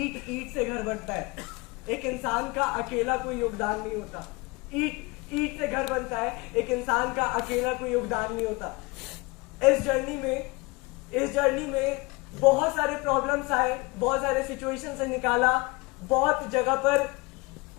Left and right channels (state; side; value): quieter; right; 25.3 dB